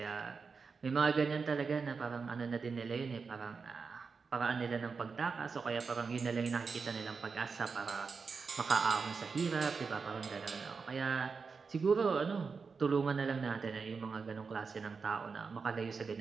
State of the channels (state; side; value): quieter; left; 5.1 dB